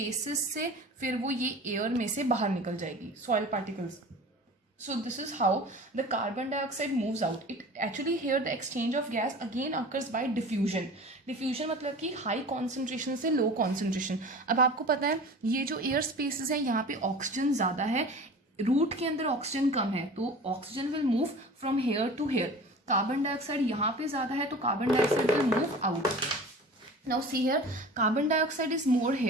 से फिर वो ये एयर में से बाहर निकल जाएगी, soil particles. So this is how the carbon dioxide moves out. It actually here the exchange of gas again occurs by diffusion. Diffusion मतलब कि high concentration से low concentration. अब आपको पता है ये जो air spaces है यहाँ पे ऑक्सीजन ज़्यादा है, रूट के अंदर ऑक्सीजन कम है, तो oxygen will move from here to here. Carbon dioxide यहाँ पे ज़्यादा है तो carbon dioxide will move out. Now see here, carbon dioxide is more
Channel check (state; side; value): normal; both; correlation 0.39